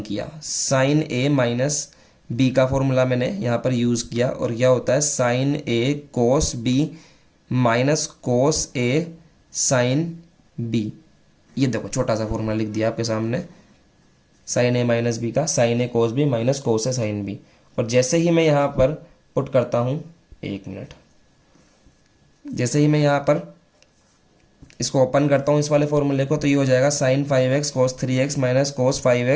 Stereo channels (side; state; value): both; identical; correlation 1.00